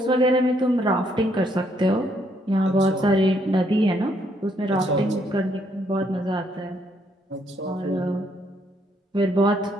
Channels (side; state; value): both; normal; correlation 0.71